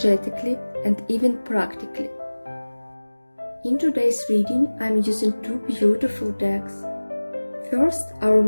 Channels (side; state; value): both; inverted; correlation -1.00